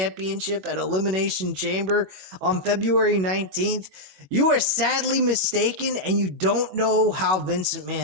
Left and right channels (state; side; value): late; left; 21 ms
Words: at Elimination Chamber on February 19th, you are sadly mistaken and you don't know how Vincent